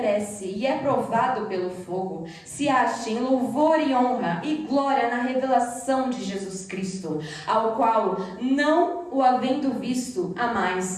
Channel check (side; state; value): both; identical; correlation 1.00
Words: e é provado pelo fogo, se ache em louvor e honra e glória na revelação de Jesus Cristo, ao qual, não o havendo visto,